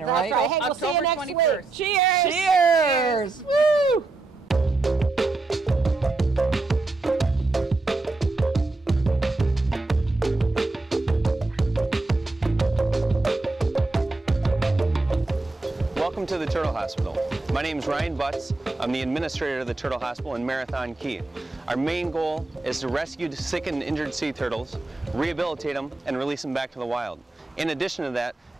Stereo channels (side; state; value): left; quieter; 3.3 dB